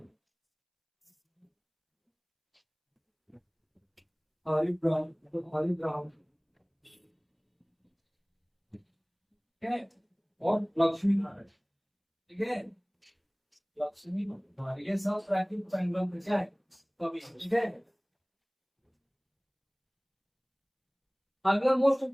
हरिब्रह्म, हरिब्रह्म, ठीक है, और लक्ष्मीधर, ठीक है, लक्ष्मीधर, ये सब प्राकृतिक पेंडुलम के क्या है, कवि, ठीक है। अगला मोस्ट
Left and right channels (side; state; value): both; identical; correlation 1.00